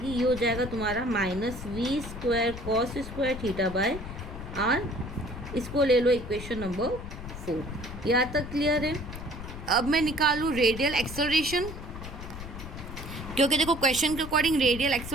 ये हो जाएगा तुम्हारा minus v square cos square theta by r. इसको ले लो इक्वेशन नंबर 4। यहाँ तक क्लियर है। अब मैं निकालूँ रेडियल एक्सेलरेशन, क्योंकि देखो क्वेश्चन के अकॉर्डिंग रेडियल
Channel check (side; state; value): left; noise; rumble, 10 dB below the sound